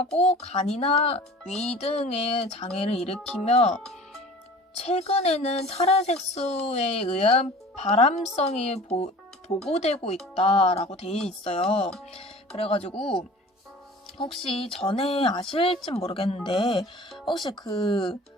간이나 위 등의 장애를 일으키며 최근에는 타르 색소에 의한 발암성이 보고되고 있다라고 돼 있어요. 그래가지고 혹시 전에 아실진 모르겠는데 혹시 그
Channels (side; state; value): both; normal; correlation 0.43